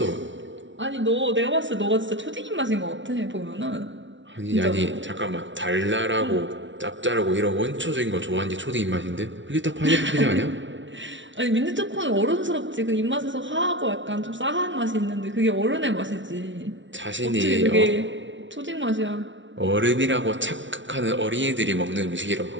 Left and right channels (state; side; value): late; left; 0.55 ms